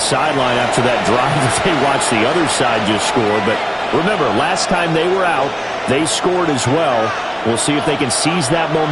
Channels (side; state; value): both; identical; correlation 1.00